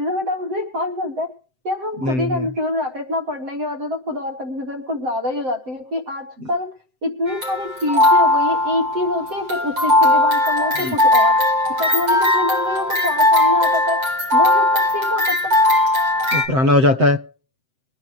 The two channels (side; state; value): left; late; 7.8 ms